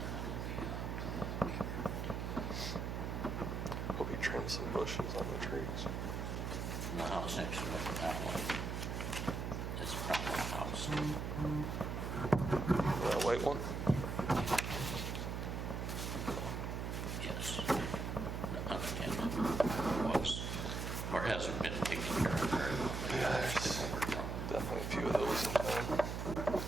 be up. Hope he trims some bushes on the trees. And the house next to it, that one, is a problem house. That white one? Yes. Unattended was, or hasn't been taken care of very well. Yeah, there's definitely a few of those in town.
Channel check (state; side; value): noise; right; hum, 3 dB below the sound